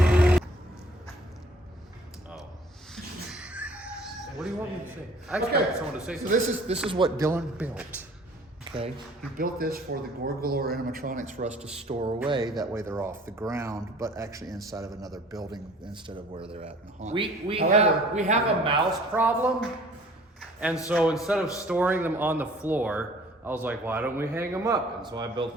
What do you want me to say? I expect someone to say So something. this is what Dylan built. Okay, he built this for the Gore Galore animatronics for us to store away. That way they're off the ground, but actually inside of another building instead of where they're at in the haunt. We However, have a mouse problem, and so instead of storing them on the floor, I was like, why don't we hang them up? And so I built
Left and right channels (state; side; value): normal; both; correlation 0.52